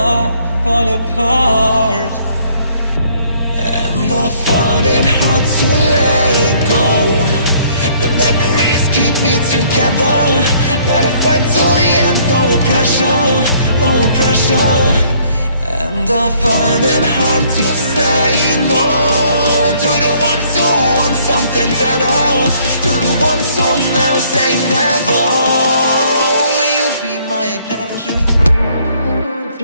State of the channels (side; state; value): both; inverted; correlation -0.62